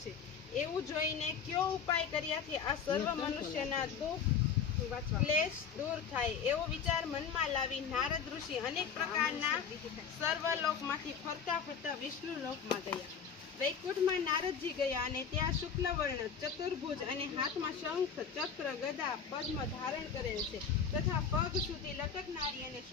છે। એવું જોઈને કયો ઉપાય કર્યાથી આ સર્વ મનુષ્યના દુઃખ ક્લેશ દૂર થાય, એવો વિચાર મનમાં લાવી નારદ ઋષિ અનેક પ્રકારના સર્વલોકમાંથી ફરતા ફરતા વિષ્ણુ લોકમાં ગયા। વૈકુંઠમાં નારદજી ગયા અને ત્યાં શુક્લવર્ણ ચતુર્ભુજ અને હાથમાં શંખ, ચક્ર, ગદા, પદ્મ ધારણ કરેલ છે તથા પગ સુધી લટકનારી અને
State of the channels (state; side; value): quieter; right; 6.7 dB